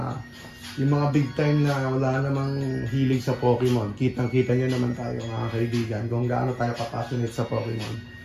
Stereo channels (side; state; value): both; identical; correlation 1.00